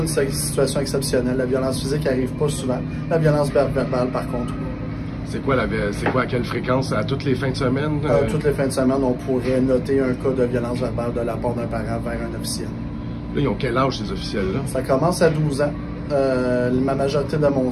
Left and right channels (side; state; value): both; identical; correlation 1.00